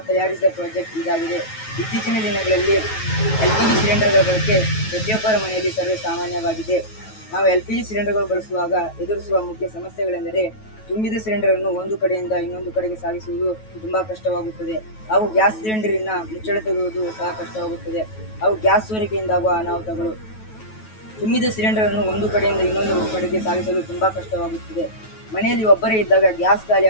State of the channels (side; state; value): right; late; 9.2 ms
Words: ತಯಾರಿಸಿದ ಪ್ರಾಜೆಕ್ಟ್ ಇದಾಗಿದೆ. ಇತ್ತೀಚಿನ ದಿನಗಳಲ್ಲಿ LPG ಸಿಲಿಂಡರ್ಗಳ ಬಳಕೆ ಪ್ರತಿಯೊಬ್ಬರ ಮನೆಯಲ್ಲಿ ಸರ್ವೇ ಸಾಮಾನ್ಯವಾಗಿದೆ. ನಾವು LPG ಸಿಲಿಂಡರ್ಗಳು ಬಳಸುವಾಗ ಎದುರಿಸುವ ಮುಖ್ಯ ಸಮಸ್ಯೆಗಳೆಂದರೆ ತುಂಬಿದ ಸಿಲಿಂಡರನ್ನು ಒಂದು ಕಡೆಯಿಂದ ಇನ್ನೊಂದು ಕಡೆಗೆ ಸಾಗಿಸುವುದು ತುಂಬಾ ಕಷ್ಟವಾಗುತ್ತದೆ. ಹಾಗೂ ಗ್ಯಾಸ್ ಸಿಲಿಂಡರಿನ ಮುಚ್ಚಳ ತೆಗೆಯುವುದು ಸಹ ಕಷ್ಟವಾಗುತ್ತದೆ. ಹಾಗೂ ಗ್ಯಾಸ್ ಸೋರಿಕೆಯಿಂದಾಗುವ ಅನಾಹುತಗಳು. ತುಂಬಿದ ಸಿಲಿಂಡರನ್ನು ಒಂದು ಕಡೆಯಿಂದ ಇನ್ನೊಂದು ಕಡೆಗೆ ಸಾಗಿಸಲು ತುಂಬಾ ಕಷ್ಟವಾಗುತ್ತದೆ. ಮನೆಯಲ್ಲಿ ಒಬ್ಬರೇ ಇದ್ದಾಗ ಗ್ಯಾಸ್ ಖಾಲಿ